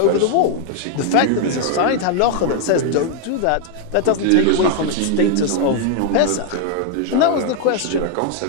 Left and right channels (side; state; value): both; different; correlation 0.00